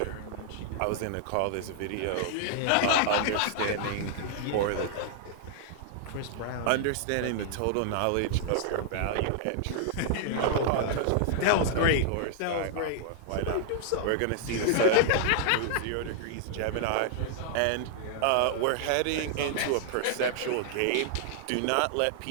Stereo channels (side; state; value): both; different; correlation -0.01